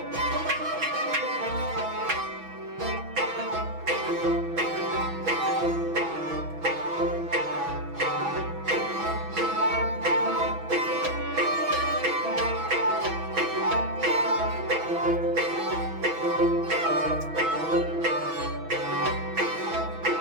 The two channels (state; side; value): late; left; 6.1 ms